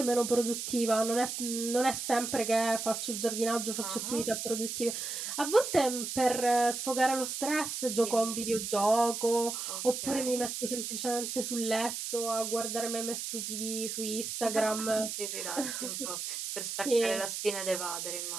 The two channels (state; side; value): noise; right; hiss, 4 dB below the sound